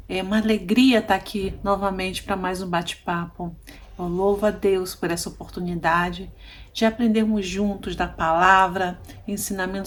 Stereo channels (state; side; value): identical; both; correlation 1.00